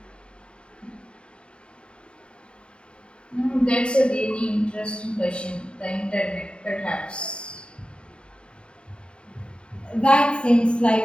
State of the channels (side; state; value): right; late; 0.053 ms